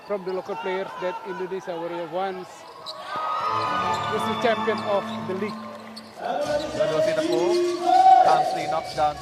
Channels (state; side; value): identical; both; correlation 1.00